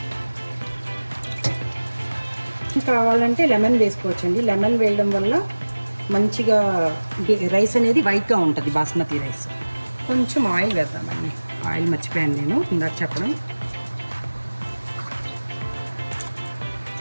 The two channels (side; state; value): both; inverted; correlation -1.00